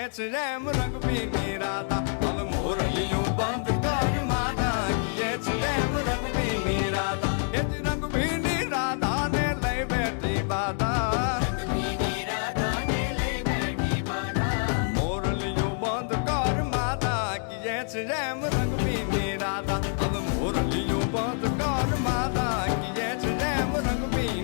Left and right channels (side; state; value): right; silent; 60 dB below the other